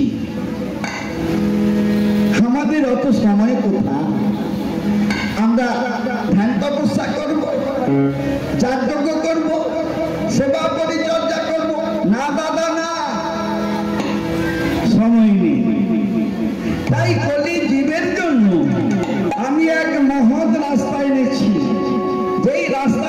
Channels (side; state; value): both; identical; correlation 1.00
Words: আমাদের অত সময় কোথা? আমরা ধ্যান তপস্যা করব, যজ্ঞ করব, সেবা পরিচর্যা করব? না দাদা না, সময় নেই। তাই কলি জীবের জন্য আমি এক মহৎ রাস্তা এনেছি, যেই রাস্তা